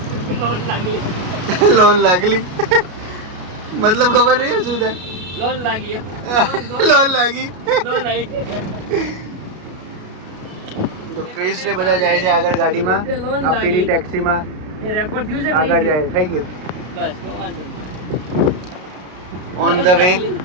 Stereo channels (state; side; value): late; left; 33 ms